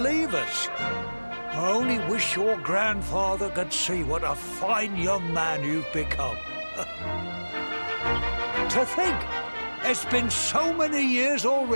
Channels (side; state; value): both; inverted; correlation -1.00